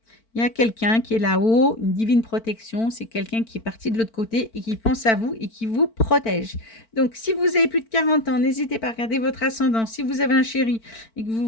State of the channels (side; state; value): right; late; 4.5 ms